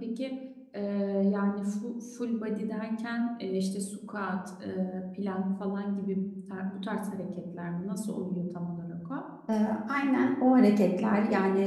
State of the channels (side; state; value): both; identical; correlation 1.00